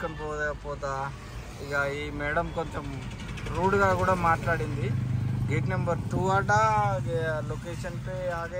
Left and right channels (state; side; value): identical; both; correlation 1.00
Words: పోతా. ఇక ఈ మేడం కొంచెం రూడ్గా కూడా మాట్లాడింది. గేట్ నెంబర్ 2 అట, లొకేషన్ పే